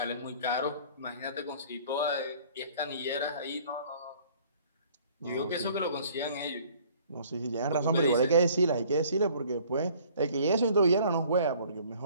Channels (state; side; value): inverted; both; correlation -0.54